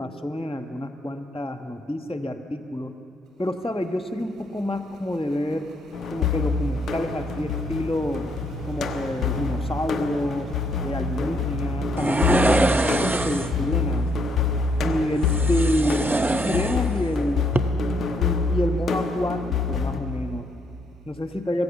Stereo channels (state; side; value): normal; both; correlation 0.72